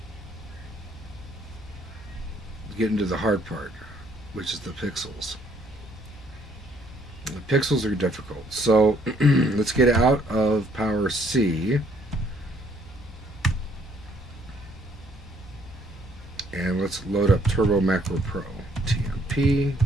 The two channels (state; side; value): normal; both; correlation 0.65